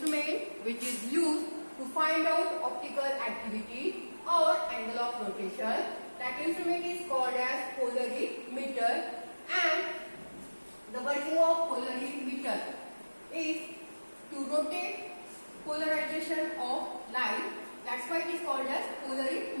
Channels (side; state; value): both; inverted; correlation -1.00